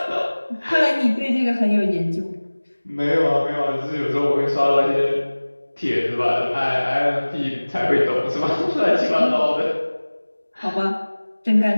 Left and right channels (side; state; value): both; inverted; correlation -1.00